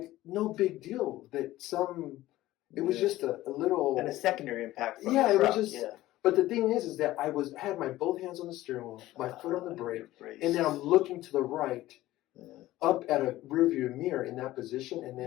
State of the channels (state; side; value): quieter; right; 16.1 dB